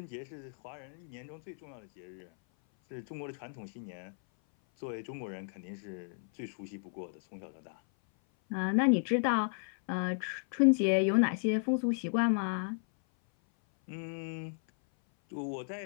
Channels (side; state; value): right; silent; 55 dB below the other